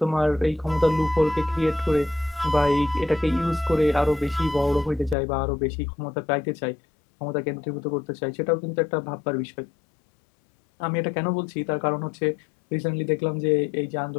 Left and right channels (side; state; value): right; drops out; at 5.2 s